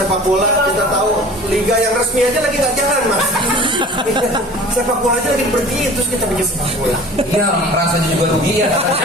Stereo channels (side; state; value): both; normal; correlation 0.43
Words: bola? Kita tahu liga yang resmi aja lagi nggak jalan, Mas. Sepak bola aja lagi pergi, terus kita bikin sepak bola. Iya, merasa juga rugi ya.